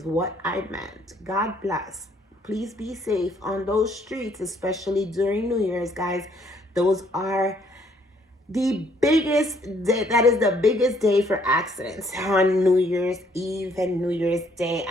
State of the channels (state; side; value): normal; both; correlation 0.66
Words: what I meant. God bless. Please be safe on those streets, especially during New Year's, guys. Those are the biggest day. That is the biggest day for accidents, on New Year's Eve and New Year's Day.